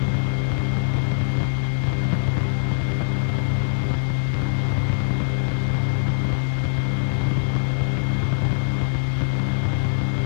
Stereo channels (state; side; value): silent; right; digital silence